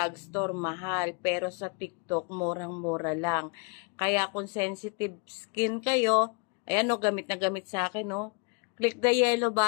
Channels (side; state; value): right; quieter; 32.8 dB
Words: mahal. Pero sa TikTok, murang-mura lang. Kaya kung sensitive skin kayo, ayan o, gamit na gamit sa akin o. Click the yellow